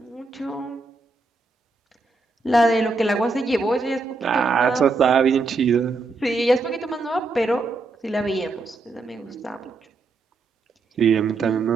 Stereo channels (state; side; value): quieter; left; 3.7 dB